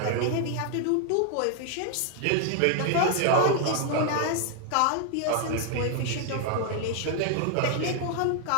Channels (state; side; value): different; both; correlation 0.00